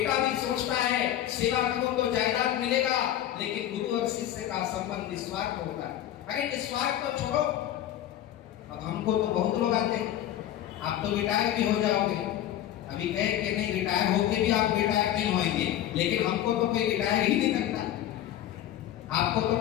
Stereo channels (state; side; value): quieter; right; 12.1 dB